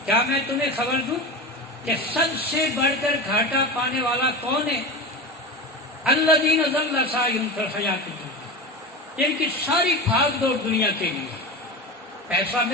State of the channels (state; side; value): normal; both; correlation 0.24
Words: کیا میں تمہیں خبر دوں کہ سب سے بڑھ کر گھاٹا پانے والا کون ہے؟ الذین ضل سعیہم فی الحیاۃ الدنیا، جن کی ساری بھاگ دوڑ دنیا کے لیے، پیسہ